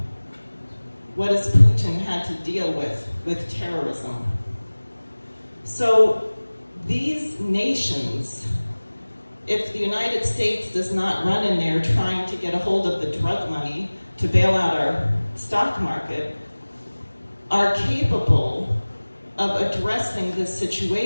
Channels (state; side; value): inverted; both; correlation -1.00